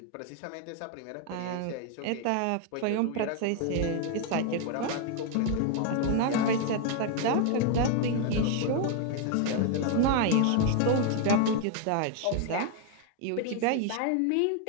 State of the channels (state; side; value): different; both; correlation 0.01